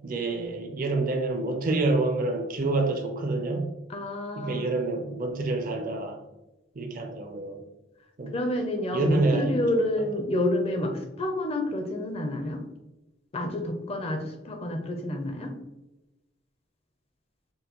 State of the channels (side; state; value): both; normal; correlation 0.55